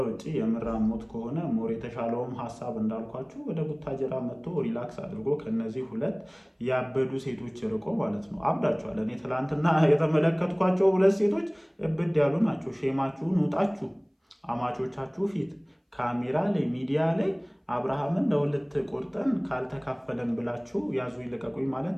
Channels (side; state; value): both; identical; correlation 1.00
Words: ውጭ የምራሞት ከሆነ ሞር የተሻለውም ሀሳብ እንዳልኳችሁ ወደ ቡታጀራ መጥቶ ሪላክስ አድርጎ ከነዚህ ሁለት ያበዱ ሴቶች ርቆ ማለት ነው። አብዳችኋል። እኔ ትላንትና የተመለከትኳቸው ሁለት ሴቶች እብድ ያሉ ናቸው። ሼማችሁን ውጣችሁ አማቾቻችሁ ፊት ካሜራ ላይ ሚዲያ ላይ አብርሃምን ለሁለት ቆርጠን ካልተካፈለን ብላችሁ ያዙ ይልቀቁኝ ማለት